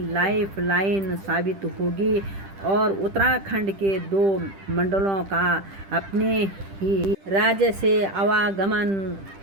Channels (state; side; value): late; left; 10 ms